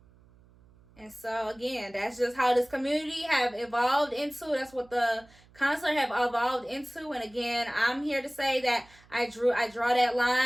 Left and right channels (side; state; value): right; noise; hum, 28 dB below the sound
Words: And so again, that's just how this community have evolved into. That's what the concert have evolved into. And again, I'm here to say that I draw that